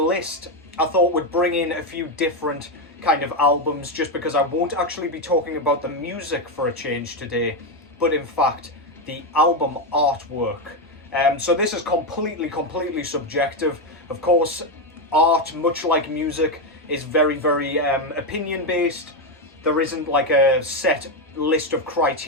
I thought would bring in a few different kind of albums, just because I won't actually be talking about the music for a change today, but in fact the album artwork. So this is completely subjective. Of course, art, much like music, is very opinion based. There isn't like a set list of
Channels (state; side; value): normal; both; correlation 0.07